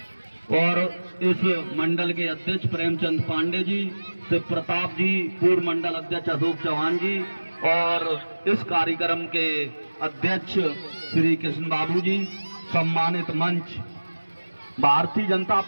और इस मंडल के अध्यक्ष प्रेमचंद पांडे जी, शिव प्रताप जी, पूर्व मंडल अध्यक्ष अशोक चौहान जी, और इस कार्यक्रम के अध्यक्ष श्री कृष्ण बाबू जी। सम्मानित मंच, भारतीय जनता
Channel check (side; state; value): both; inverted; correlation -1.00